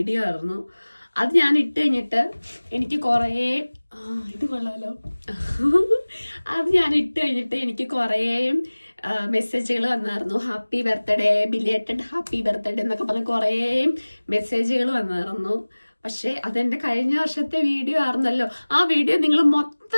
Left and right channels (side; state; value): both; inverted; correlation -1.00